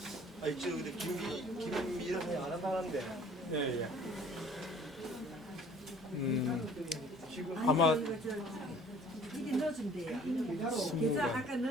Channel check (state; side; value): normal; both; correlation 0.53